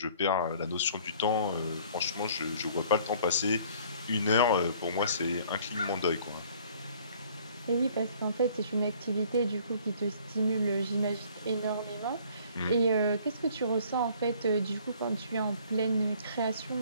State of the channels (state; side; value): inverted; both; correlation -0.56